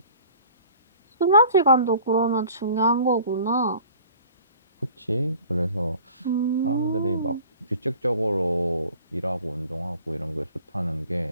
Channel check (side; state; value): both; inverted; correlation -0.48